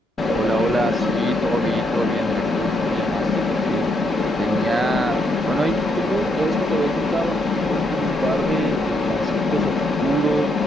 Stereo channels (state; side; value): normal; both; correlation 0.77